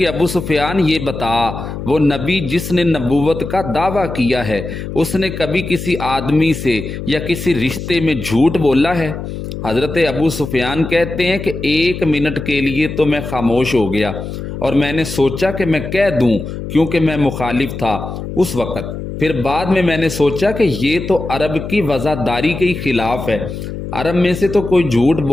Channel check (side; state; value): left; noise; hum, 8 dB below the sound